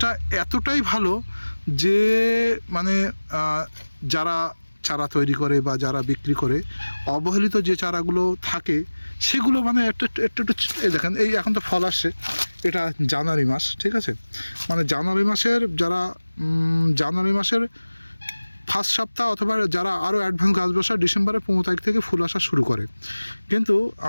এতটাই ভালো যে মানে যারা চারা তৈরি করে বা যারা বিক্রি করে, অবহেলিত যে চারাগুলো থাকে সেগুলো মানে একটু এই দেখেন, এই এখন তো ফল আসছে, এটা জানুয়ারি মাস, ঠিক আছে। মানে জানুয়ারি মাসের ফার্স্ট সপ্তাহ, অথবা যারা আরও অ্যাডভান্স গাছ বসায় ডিসেম্বরের 15 তারিখ থেকে ফুল আসা শুরু করে। কিন্তু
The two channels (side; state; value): both; inverted; correlation -1.00